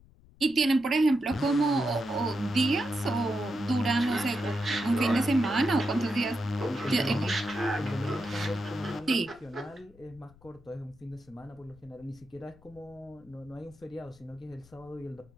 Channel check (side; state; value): left; noise; rumble, 26 dB below the sound